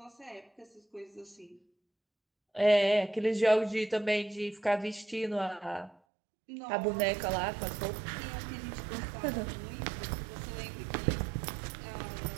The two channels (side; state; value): left; drops out; at 6.0 s